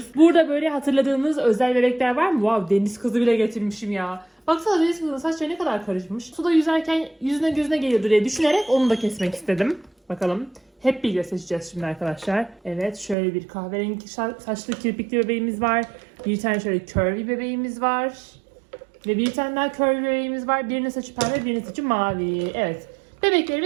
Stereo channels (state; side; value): drops out; left; at 13.2 s